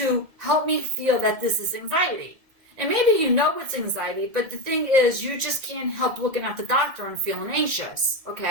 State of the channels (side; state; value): left; late; 1.9 ms